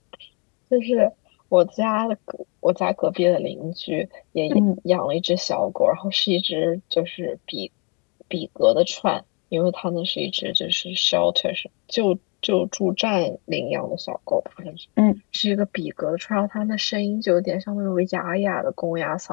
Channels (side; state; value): right; quieter; 31.3 dB